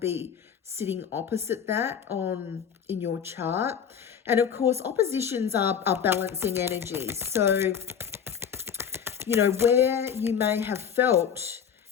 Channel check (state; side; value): quieter; right; 7.8 dB